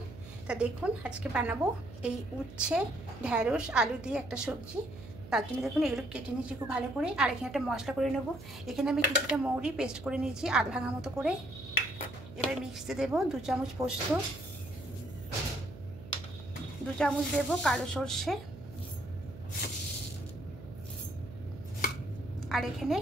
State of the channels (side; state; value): right; noise; hum, 15 dB below the sound